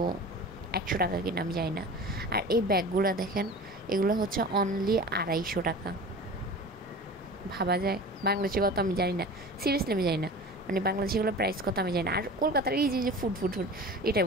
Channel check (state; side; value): normal; both; correlation 0.37